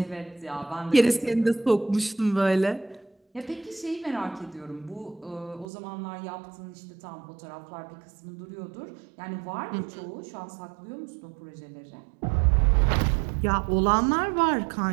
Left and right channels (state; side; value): drops out; left; at 5.7 s